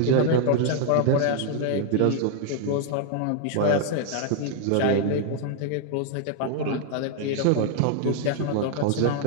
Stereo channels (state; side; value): different; both; correlation 0.00